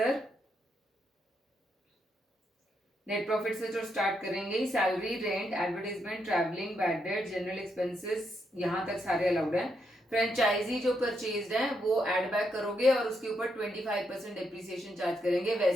नेट प्रॉफिट से जो स्टार्ट करेंगे, salary, rent, advertisement, travelling, bad debt, general expenses, यहाँ तक सारे अलाउड हैं। फ्रेंचाइजी जो परचेज्ड है वो ऐड बैक करोगे और उसके ऊपर 25% डेप्रिसिएशन चार्ज करेंगे,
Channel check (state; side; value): normal; both; correlation 0.79